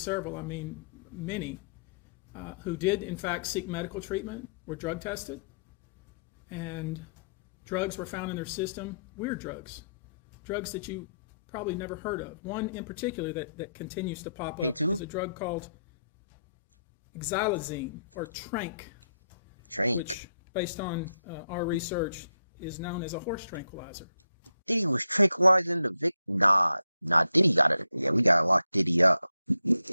I mean many, who did in fact seek medical treatment were drug tested, and drugs were found in their system, weird drugs that you probably never heard of. One in particular that continues to pop up is a drug called xylazine, or Trank, which, based on our research, is known as a horse tranquilizer. Diddy was tranquilizing the victim. Nah, Diddy got it. Yeah, we gotta lock Diddy up.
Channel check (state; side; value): inverted; both; correlation -0.77